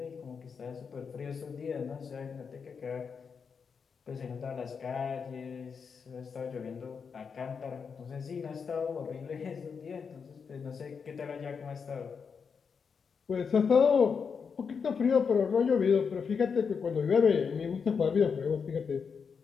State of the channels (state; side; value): quieter; right; 6.0 dB